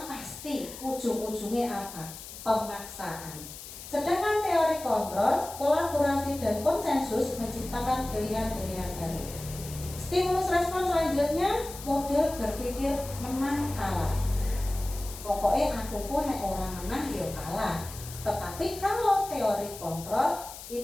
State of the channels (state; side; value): noise; left; hiss, 13 dB below the sound